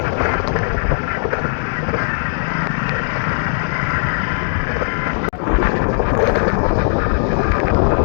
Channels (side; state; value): right; silent; digital silence